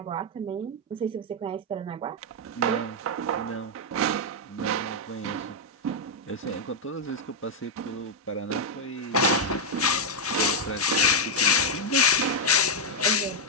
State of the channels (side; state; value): both; normal; correlation -0.02